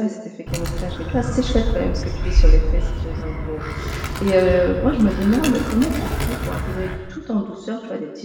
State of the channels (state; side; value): identical; both; correlation 1.00